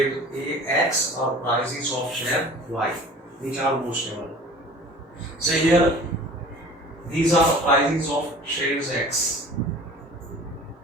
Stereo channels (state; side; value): normal; both; correlation 0.44